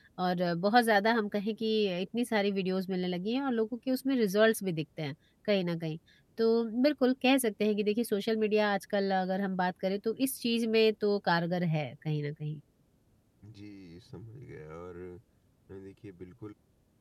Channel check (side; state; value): both; identical; correlation 1.00